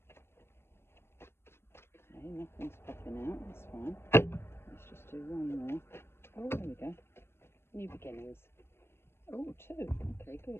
nothing's popping out, that's fine. Let's just do one more. Oh, there we go. New beginnings. Oh, 2. Okay,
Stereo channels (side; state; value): right; late; 0.12 ms